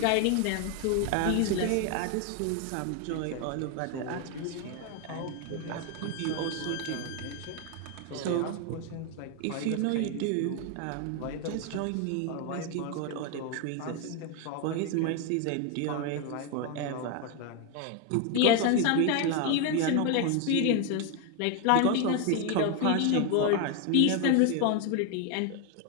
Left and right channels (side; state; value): both; different; correlation 0.01